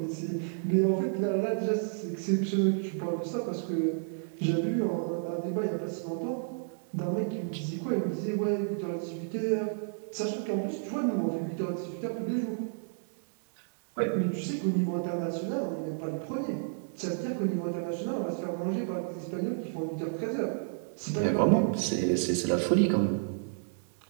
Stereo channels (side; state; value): left; silent; digital silence